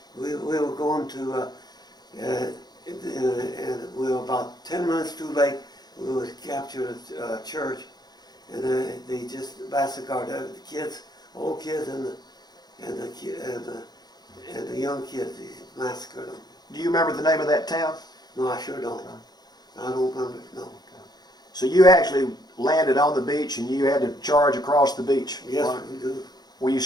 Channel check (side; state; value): right; late; 0.20 ms